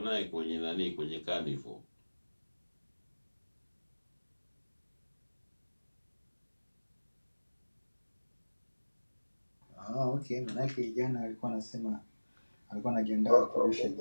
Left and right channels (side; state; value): both; inverted; correlation -1.00